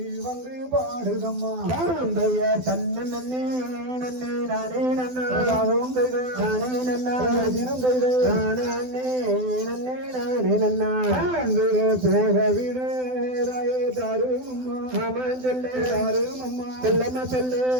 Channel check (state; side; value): late; left; 12 ms